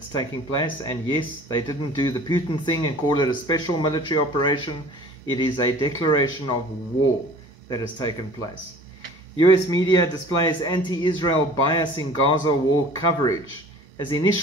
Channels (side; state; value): both; normal; correlation 0.46